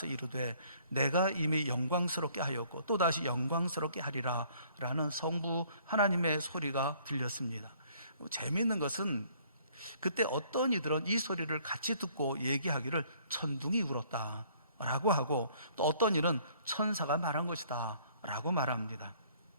이르되 내가 이미 영광스럽게 하였고 또다시 영광스럽게 하리라 라는 성부 하나님의 소리가 들렸습니다. 재미있는 것은 그때 어떤 이들은 이 소리를 같이 듣고 얘기하기를 천둥이 울었다 라고 하고, 또 어떤 이는 천사가 말한 것이다 라고 말합니다.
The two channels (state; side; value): inverted; both; correlation -0.60